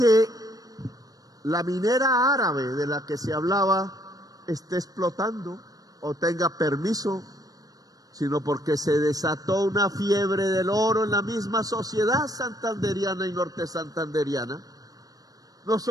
la minera árabe de la que se hablaba esté explotando o tenga permiso, sino porque se desató una fiebre del oro en la misma sociedad santanderiana y norte santanderiana. No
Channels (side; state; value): left; late; 0.18 ms